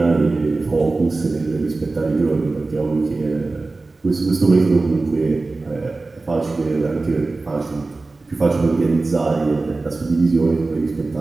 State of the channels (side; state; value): left; quieter; 3.5 dB